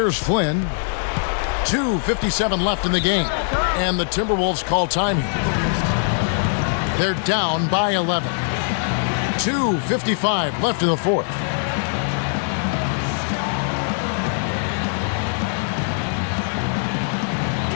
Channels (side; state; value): right; silent; 65 dB below the other